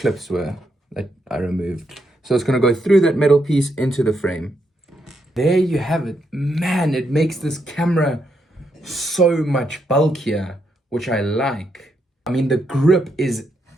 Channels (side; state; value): both; normal; correlation 0.79